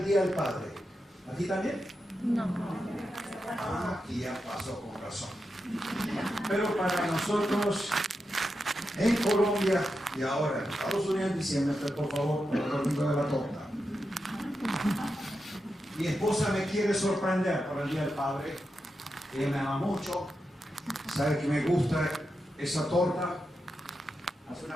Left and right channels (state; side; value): normal; both; correlation 0.88